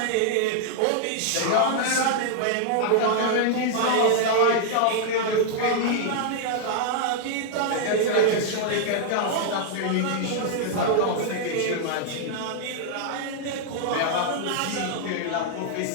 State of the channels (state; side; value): different; both; correlation -0.01